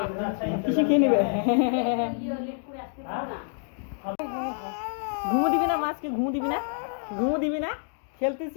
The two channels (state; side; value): silent; right; digital silence